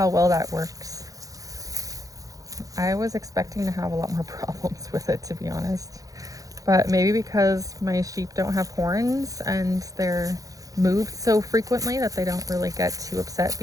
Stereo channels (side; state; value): left; late; 0.17 ms